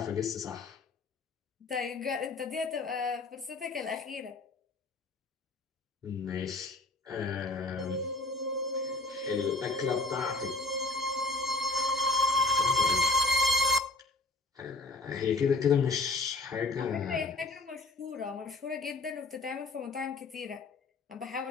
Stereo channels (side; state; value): right; quieter; 3.2 dB